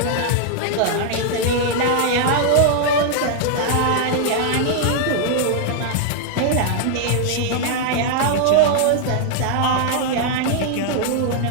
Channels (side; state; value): both; different; correlation 0.00